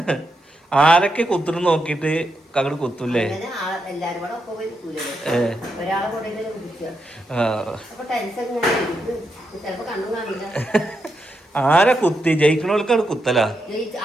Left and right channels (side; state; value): both; normal; correlation 0.84